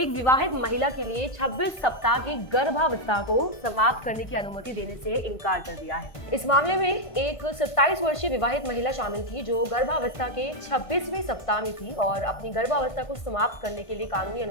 विवाहित महिला के लिए 26 सप्ताह की गर्भावस्था को समाप्त करने की अनुमति देने से इनकार कर दिया है। इस मामले में एक 27 वर्षीय विवाहित महिला शामिल थी, जो गर्भावस्था के 26वें सप्ताह में थी और अपनी गर्भावस्था को समाप्त करने के लिए कानूनी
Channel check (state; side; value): late; right; 1.5 ms